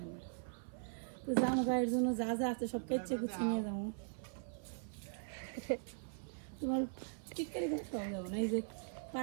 না। তো জামু গায়ের জন্য যা যা আছে সব কেচে কুচে নিয়ে যাবো। তোমার টিটকারি করে খাওয়া যাবো না। এই যে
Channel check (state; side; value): silent; left; 51 dB below the other